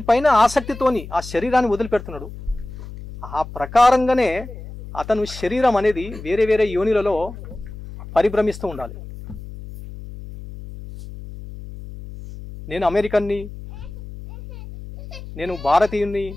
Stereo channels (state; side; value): noise; left; hum, 13 dB below the sound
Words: ఆసక్తితోని ఆ శరీరాన్ని వదిలిపెడుతున్నాడు. ఆ ప్రకారంగానే అతను శరీరం అనేది వేరే వేరే యోనిలలో పరిభ్రమిస్తూ ఉండాలి. నేను అమెరికన్ని, నేను భారతీయుణ్ణి